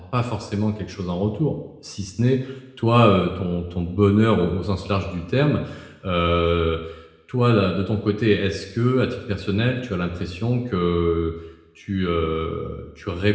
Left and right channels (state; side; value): identical; both; correlation 1.00